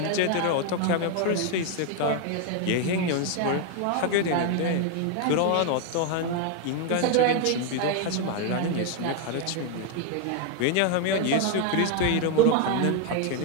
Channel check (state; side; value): different; both; correlation 0.01